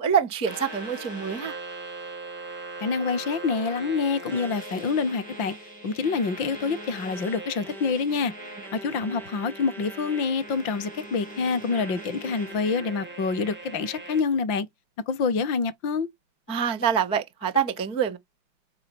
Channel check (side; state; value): right; late; 5.7 ms